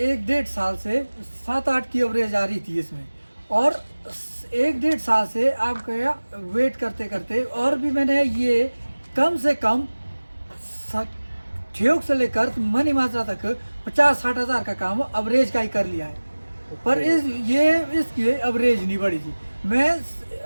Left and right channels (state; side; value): inverted; both; correlation -1.00